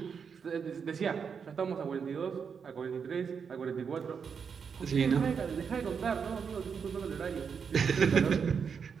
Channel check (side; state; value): left; quieter; 6.4 dB